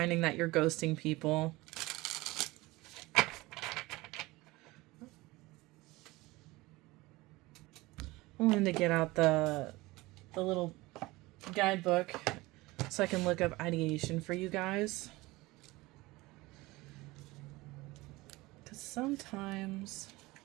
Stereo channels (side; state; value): left; quieter; 20.9 dB